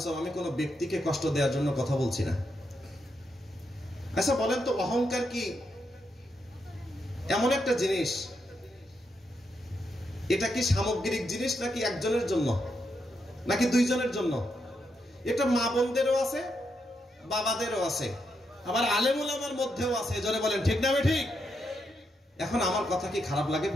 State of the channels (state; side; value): normal; both; correlation 0.82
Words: আমি কোন ব্যক্তিকে কষ্ট দেওয়ার জন্য কথা বলছি না। আচ্ছা বলেন তো, অহংকার কি এমন একটা জিনিস, এটা কি সামগ্রিক জিনিস নাকি একজনের জন্য নাকি দুইজনের জন্য? এটা মা বোনদেরও আছে, বাবাদেরও আছে, আবার আলেম ওলামার মধ্যেও আছে। জোরে বলেন ঠিক না ঠিক? এখন আমার কথা কি খারাপ লাগে